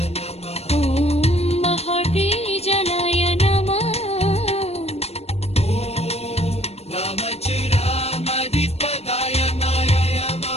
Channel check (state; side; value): late; right; 0.30 ms